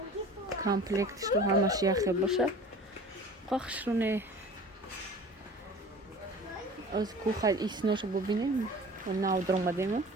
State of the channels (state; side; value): normal; both; correlation 0.42